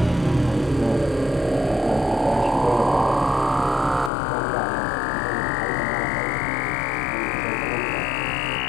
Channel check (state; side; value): drops out; right; at 4.1 s